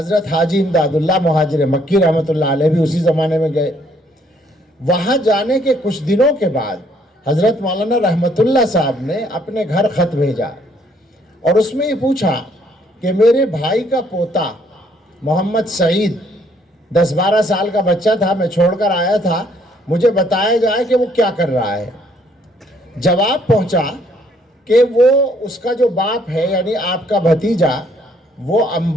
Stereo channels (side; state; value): both; normal; correlation 0.66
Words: حاجی امداد اللہ مہاجر مکی رحمت اللہ علیہ بھی اسی زمانے میں گئے۔ وہاں جانے کے کچھ دنوں کے بعد حضرت مولانا رحمت اللہ صاحب نے اپنے گھر خط بھیجا اور اس میں یہ پوچھا کہ میرے بھائی کا پوتا محمد سعید 10-12 سال کا بچہ تھا، میں چھوڑ کر آیا تھا، مجھے بتایا جائے کہ وہ کیا کر رہا ہے۔ جواب پہنچا کہ وہ اس کا جو باپ ہے یعنی آپ کا بھتیجا وہ